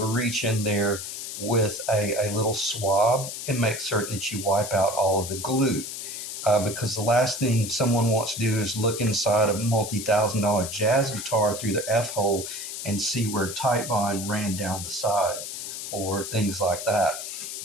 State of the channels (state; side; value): noise; left; hiss, 7 dB below the sound